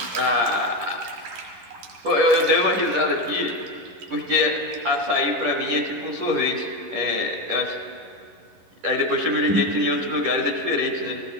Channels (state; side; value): late; left; 11 ms